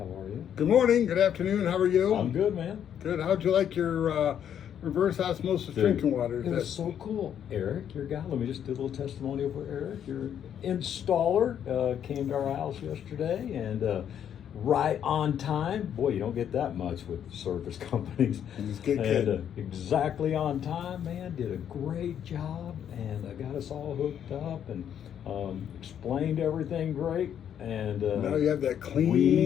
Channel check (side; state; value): right; quieter; 9.3 dB